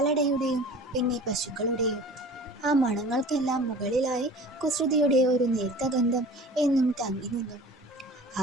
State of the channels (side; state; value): both; normal; correlation 0.42